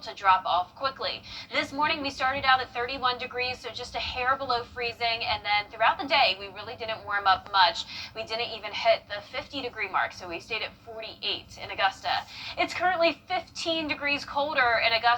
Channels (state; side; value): identical; both; correlation 1.00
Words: to drop off quickly. This morning we started out at 31 degrees, so just a hair below freezing, and then throughout the day we really didn't warm up much. We didn't even hit the 50-degree mark, so we stayed at 48 in Augusta. It's currently 15 degrees colder in